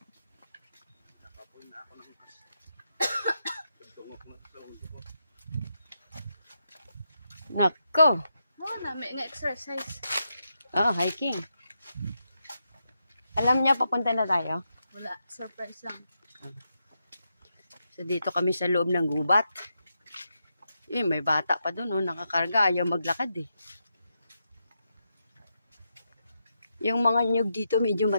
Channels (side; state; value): both; inverted; correlation -0.85